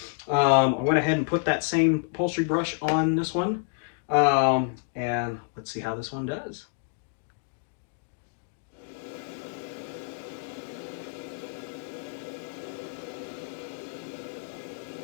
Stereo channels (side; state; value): right; silent; digital silence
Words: I went ahead and put that same upholstery brush on this one. And let's see how this one does.